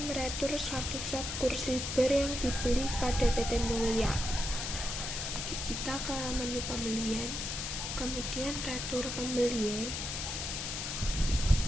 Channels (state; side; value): noise; left; hiss, 4 dB below the sound